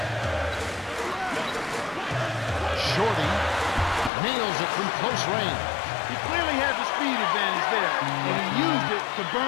Shorty nails it from close range. He clearly had the speed advantage there, and he used it to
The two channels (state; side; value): drops out; right; at 4.1 s